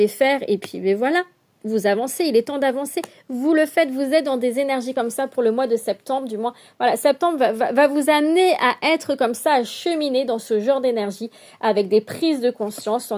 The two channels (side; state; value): both; identical; correlation 1.00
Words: faire. Et puis, mais voilà. Vous avancez, il est temps d'avancer. Vous le faites, vous êtes dans des énergies comme ça pour le mois de septembre, du moins. Voilà, septembre va vous amener à être comme ça, à cheminer dans ce genre d'énergie avec des prises de conscience,